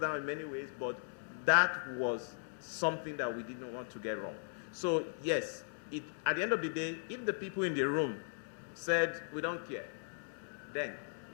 in many ways, but that was something that we didn't want to get wrong. So yes, at the end of the day, if the people in the room said, we don't care, then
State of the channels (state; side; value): silent; right; digital silence